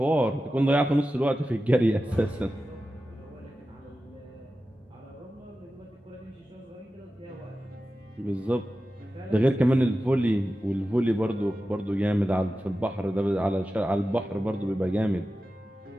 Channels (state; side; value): normal; both; correlation 0.93